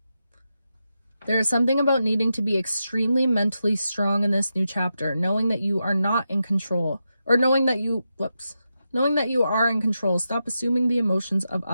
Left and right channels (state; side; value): inverted; both; correlation -0.88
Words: There is something about needing to be extremely mentally strong in this new chapter, knowing that you are not in control, or knowing that you are in control. Stop assuming the emotions of